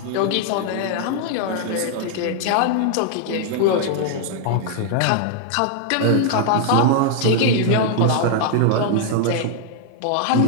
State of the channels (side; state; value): both; different; correlation 0.00